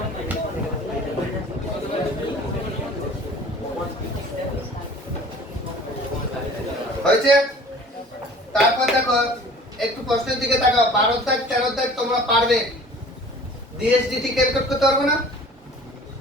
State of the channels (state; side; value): normal; both; correlation 0.47